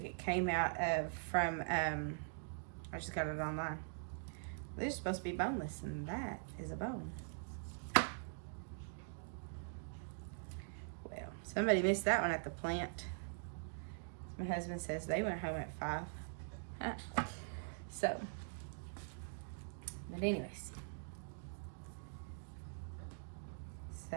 It came out from I just got it online. They're supposed to be boneless, and that is a bone. Well, somebody missed that one at the plant. My husband says they went home at 5. Huh. So, but anyways,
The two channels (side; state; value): left; silent; digital silence